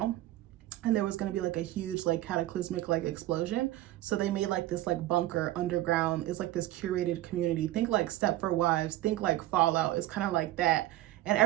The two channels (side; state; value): left; quieter; 15.4 dB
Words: and there was going to be like a huge like cataclysmic like explosion, so they made like this like bunker underground. It's like this curated community. Think like Stepford Wives, think like Fallout. It's kind of like that, and